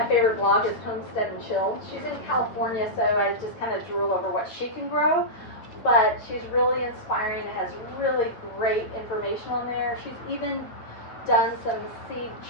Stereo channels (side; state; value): right; late; 9.7 ms